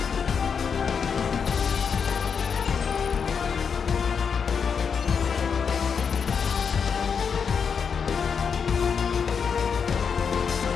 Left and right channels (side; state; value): right; quieter; 6.4 dB